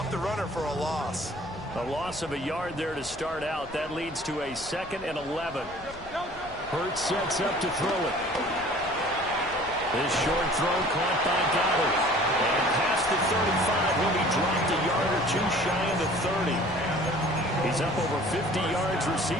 the runner for a loss. A loss of a yard there to start out. That leads to a 2nd and 11. Hurts sets up to throw it. This short throw caught by Goddard. And past the 35, he'll be dropped a yard or two shy of the 30. He's up over 50 yards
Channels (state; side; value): noise; left; rumble, 20 dB below the sound